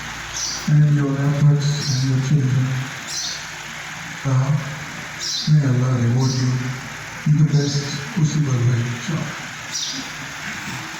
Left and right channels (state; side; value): identical; both; correlation 1.00